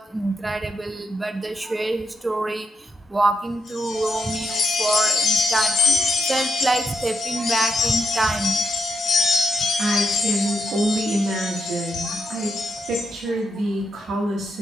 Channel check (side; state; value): both; normal; correlation 0.80